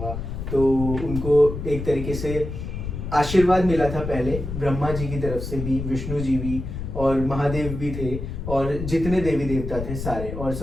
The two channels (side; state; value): left; noise; rumble, 6 dB below the sound